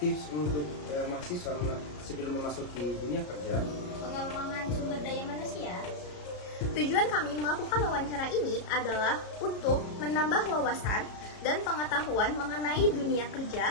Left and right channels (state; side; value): late; right; 33 ms